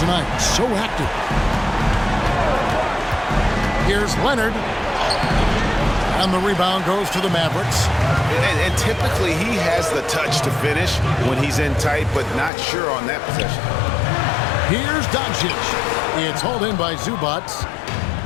So active. Here's Leonard. And the rebound goes to the Mavericks. And typically he has the touch to finish when he's in tight, but not sure on that possession. Here's Doncic. It's hauled in by Zubac.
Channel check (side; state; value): right; drops out; at 12.5 s